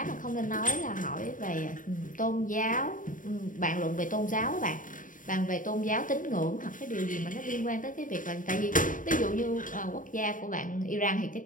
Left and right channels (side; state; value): right; late; 0.39 ms